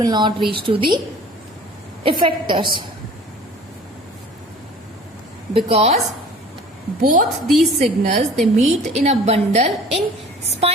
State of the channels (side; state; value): both; normal; correlation 0.46